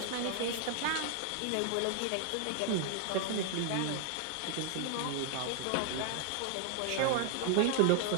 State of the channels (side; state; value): both; different; correlation 0.00